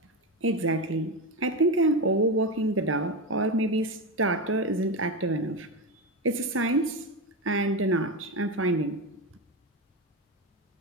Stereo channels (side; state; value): both; normal; correlation 0.16